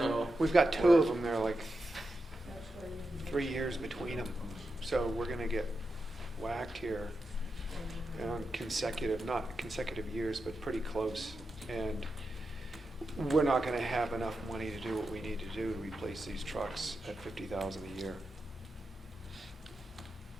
We've got two of them, they're like 3 years between them. So we're gonna get whacked here on not consecutive years, but pretty close. And we're not gonna have enough money to do what we need to do to replace these trucks at $50,000 a year.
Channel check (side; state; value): both; normal; correlation 0.89